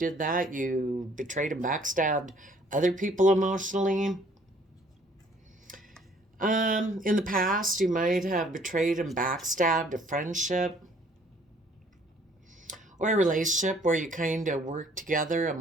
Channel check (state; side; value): normal; both; correlation 0.59